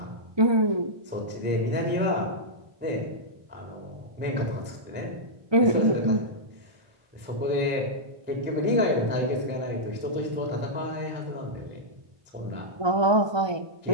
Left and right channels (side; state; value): left; late; 1.2 ms